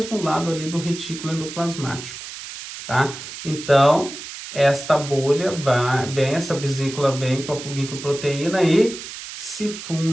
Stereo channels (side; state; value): right; noise; hiss, 11 dB below the sound